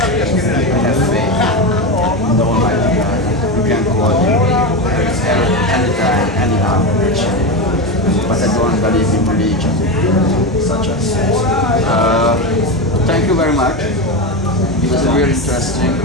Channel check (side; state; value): both; normal; correlation 0.17